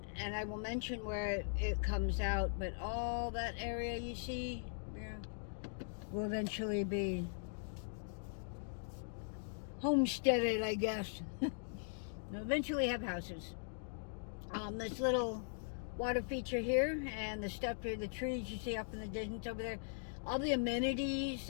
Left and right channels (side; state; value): right; silent; digital silence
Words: and I will mention where it comes out, but all that area you see there will eventually be homesteaded, I guess. They'll eventually have houses. This little water feature here and the stuff here, the trees you see up in the distance over there, all the amenities,